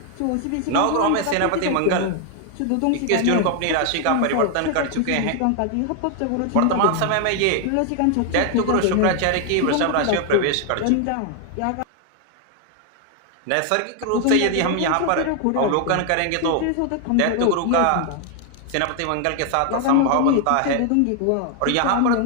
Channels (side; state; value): both; different; correlation 0.00